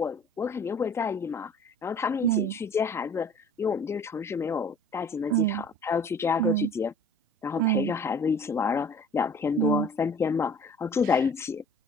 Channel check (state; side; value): normal; both; correlation 0.48